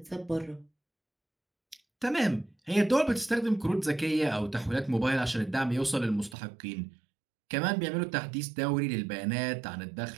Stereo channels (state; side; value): drops out; left; at 6.4 s